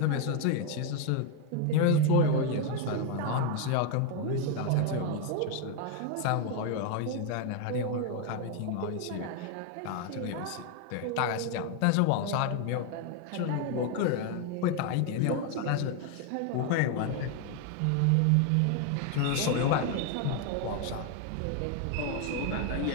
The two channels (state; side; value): different; both; correlation 0.01